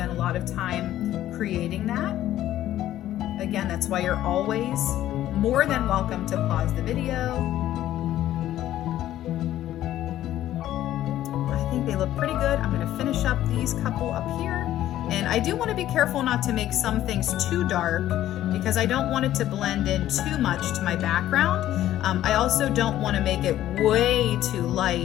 a lot of time creating that. Again, that's why you're always more than welcome to pause the video. I think they look pretty good. I'm going to finish up these couple up here. And I do want to be careful not to make some things too dark because I don't want it to blend in too much to my background. I also don't want to make it way too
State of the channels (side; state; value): right; quieter; 13.1 dB